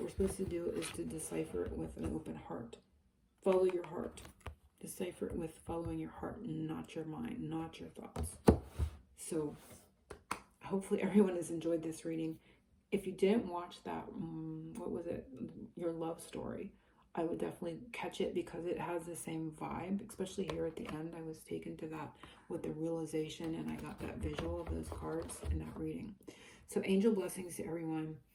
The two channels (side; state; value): both; identical; correlation 1.00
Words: we're supposed to do is to decipher it with an open heart. Follow your heart. Decipher it with following your heart, not your mind, not your thoughts. So hopefully everyone has enjoyed this reading. If you didn't watch that, what was it? Your Love Story. I would definitely catch it because it has the same vibe, especially here at the end. I was taken to that with the realization and I got that visual of those cards in that reading. So angel blessings to everyone.